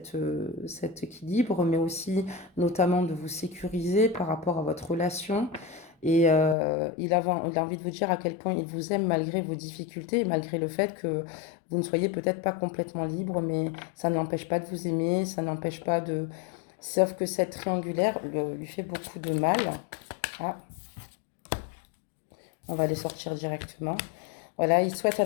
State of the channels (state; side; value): drops out; right; at 6.6 s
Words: équilibre, mais aussi notamment de vous sécuriser par rapport à votre relation. Et il a envie de vous dire à quel point il vous aime malgré vos difficultés, malgré le fait que vous ne soyez peut-être pas complètement libre, mais ça n'empêche pas de vous aimer, ça n'empêche pas de... Sauf que cette triangulaire lui fait beaucoup de mal. Ah, on va les sortir directement. Voilà, il souhaite